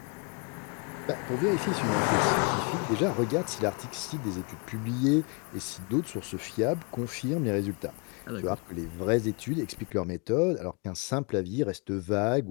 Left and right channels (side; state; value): right; quieter; 33.5 dB